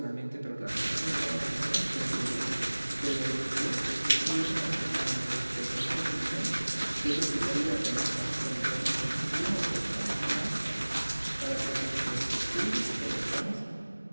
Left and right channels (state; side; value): inverted; both; correlation -1.00